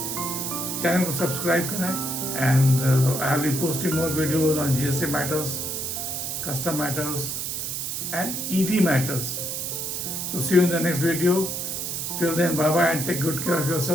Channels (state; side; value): noise; right; hiss, 3 dB below the sound